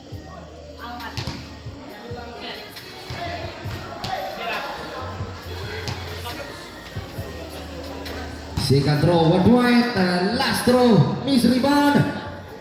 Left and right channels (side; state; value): both; identical; correlation 1.00